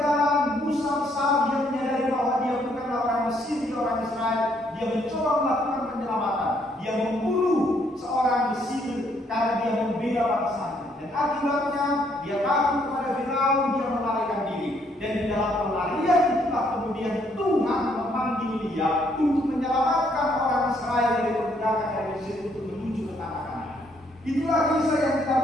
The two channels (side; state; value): both; normal; correlation 0.69